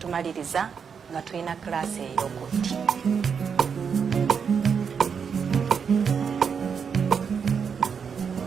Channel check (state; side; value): quieter; left; 6.6 dB